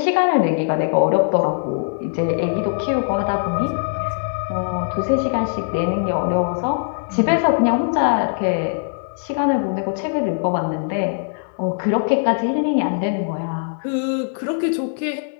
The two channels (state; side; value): silent; right; digital silence